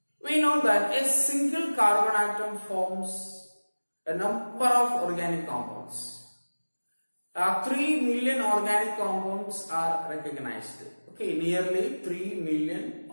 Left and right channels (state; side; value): inverted; both; correlation -1.00